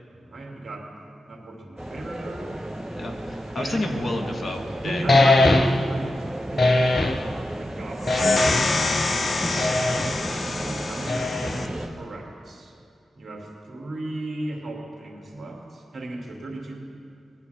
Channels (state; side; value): normal; both; correlation 0.91